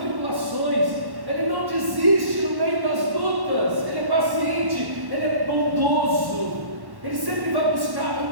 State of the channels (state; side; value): late; left; 1.1 ms